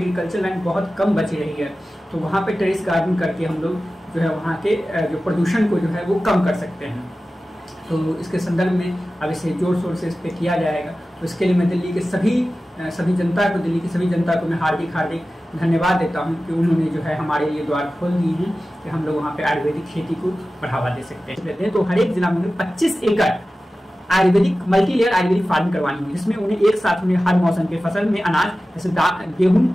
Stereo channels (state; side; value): normal; both; correlation 0.95